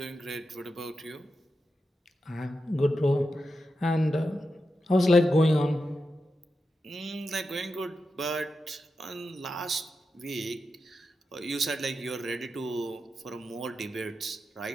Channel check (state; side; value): normal; both; correlation 0.89